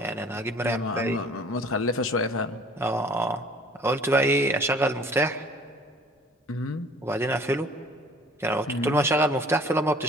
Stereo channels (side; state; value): both; normal; correlation 0.51